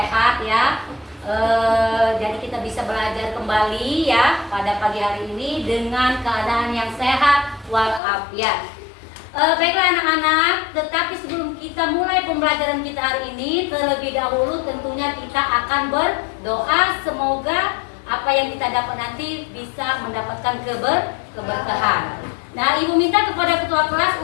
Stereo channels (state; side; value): drops out; right; at 8.0 s